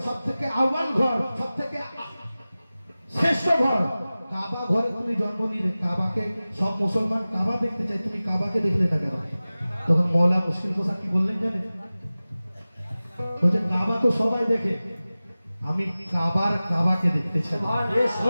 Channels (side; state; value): both; inverted; correlation -0.97